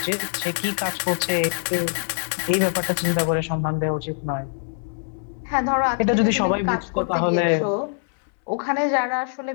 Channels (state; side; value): silent; right; 63 dB below the other